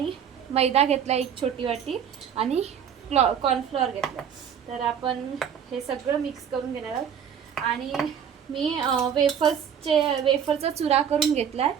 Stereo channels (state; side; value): quieter; left; 8.2 dB